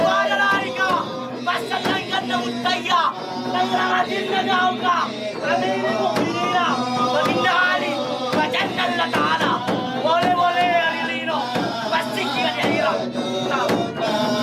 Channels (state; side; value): identical; both; correlation 1.00